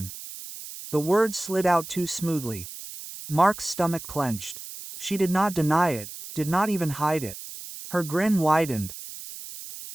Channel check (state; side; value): noise; right; hiss, 12 dB below the sound